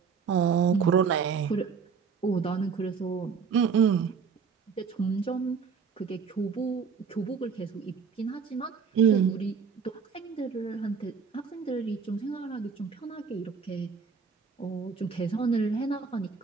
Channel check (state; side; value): quieter; left; 6.0 dB